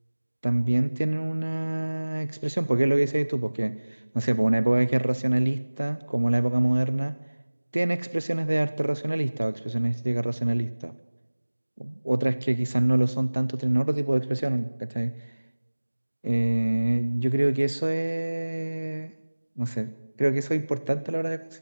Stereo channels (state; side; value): inverted; both; correlation -1.00